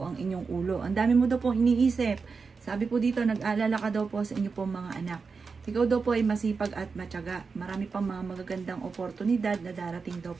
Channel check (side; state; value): left; quieter; 4.9 dB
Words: ang inyong ulo. Ang dami mo daw po iniisip. Sabi po dito, nag-aalala ka daw po sa inyo pong mga anak. Ikaw daw po ay masipag at matyaga. Marami pang mga magagandang oportunidad na darating daw